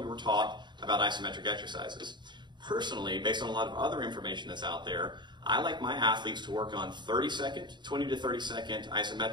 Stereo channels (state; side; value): late; left; 0.22 ms